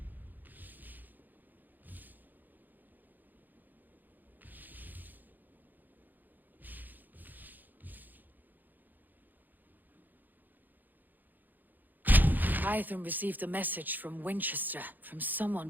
Hytham received a message from Wincestre, from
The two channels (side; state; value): left; late; 0.086 ms